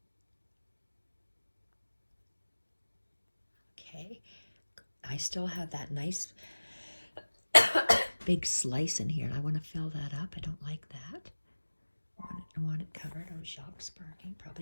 Okay, I still have that nice big slice in here, and I want to fill that up. I don't like that. I want it covered. Oh, Jacques barking.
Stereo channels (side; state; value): both; inverted; correlation -1.00